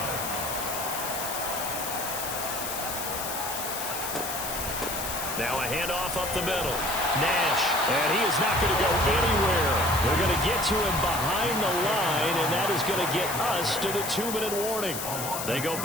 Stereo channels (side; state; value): left; noise; hiss, 5 dB below the sound